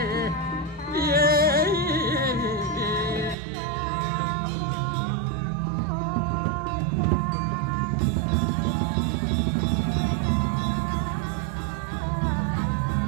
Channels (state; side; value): drops out; left; at 3.4 s